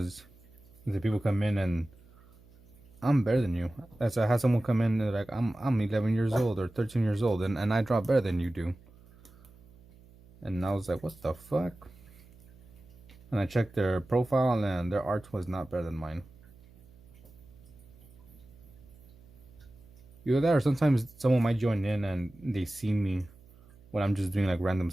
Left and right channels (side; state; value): right; noise; hum, 26 dB below the sound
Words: The people come in and I'm better than you. That's I had someone come in and like I'm 11 years old or 13 years old and I draw better than you do. And I was like, what the fuck? And I checked their profile and their art was not better than mine. Either that or sometimes someone might join in and they see me when I'm just doing like random